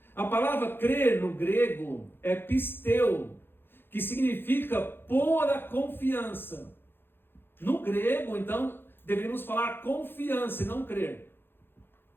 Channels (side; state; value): right; late; 0.10 ms